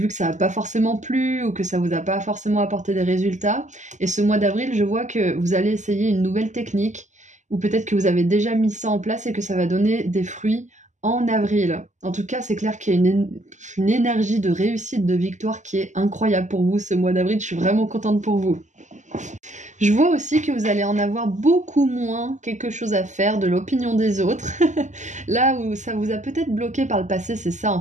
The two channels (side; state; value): left; late; 0.35 ms